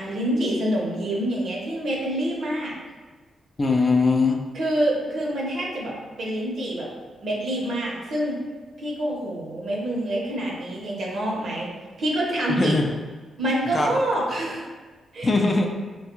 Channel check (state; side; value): normal; both; correlation 0.79